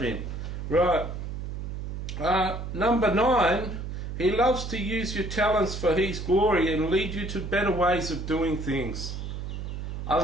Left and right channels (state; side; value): noise; right; hum, 6 dB below the sound